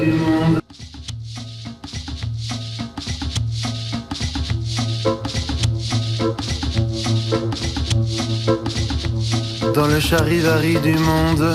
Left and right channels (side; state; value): both; identical; correlation 1.00